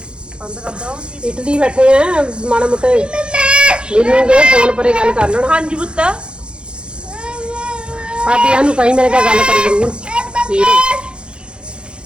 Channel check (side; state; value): left; late; 0.054 ms